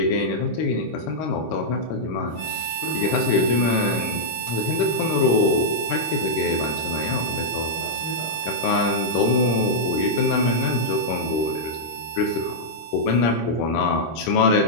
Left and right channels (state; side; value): late; right; 26 ms